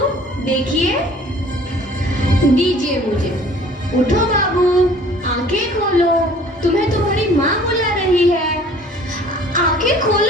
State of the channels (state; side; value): normal; both; correlation 0.51